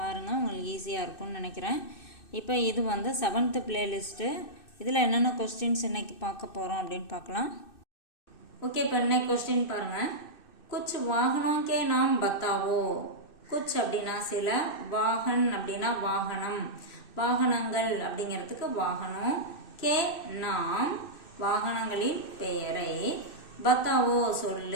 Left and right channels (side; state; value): right; late; 2.6 ms